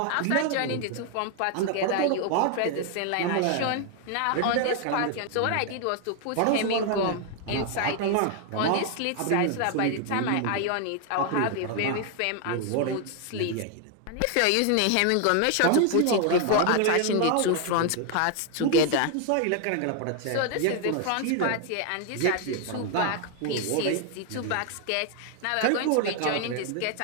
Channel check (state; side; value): different; both; correlation 0.00